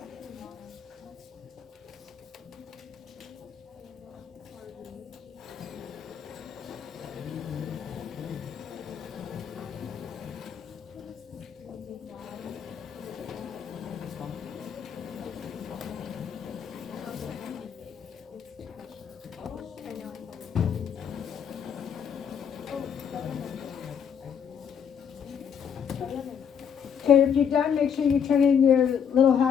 Okay, if you're done, make sure you turn in your little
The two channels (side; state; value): right; quieter; 7.6 dB